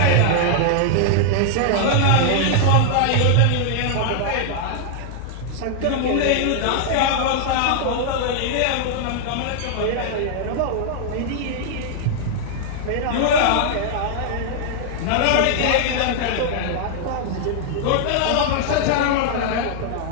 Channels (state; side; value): different; both; correlation -0.01